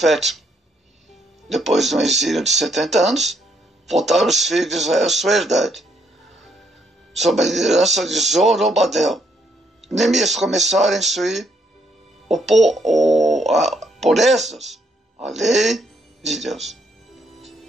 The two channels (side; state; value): both; normal; correlation 0.73